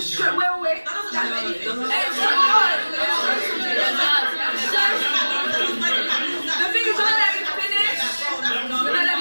shows. Wait. The thing is, don't let me finish. You're not letting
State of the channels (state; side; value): inverted; both; correlation -1.00